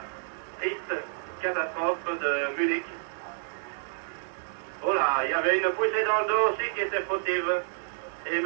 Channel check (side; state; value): left; silent; 59 dB below the other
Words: triste catastrophe de Munich. Oh là, il y avait une poussée dans le dos aussi qui était fautive. Et